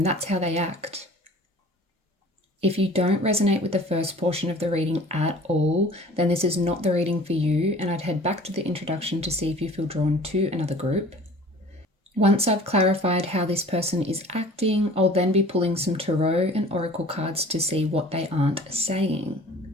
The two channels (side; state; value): both; normal; correlation 0.46